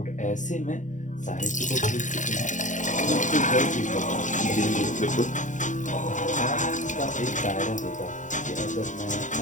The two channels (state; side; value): late; right; 0.36 ms